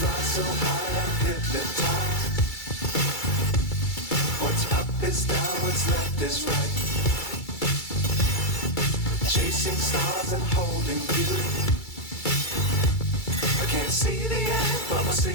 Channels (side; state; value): right; late; 2.3 ms